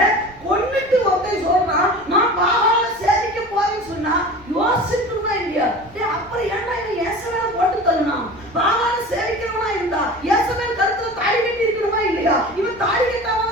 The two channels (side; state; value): right; noise; rumble, 25 dB below the sound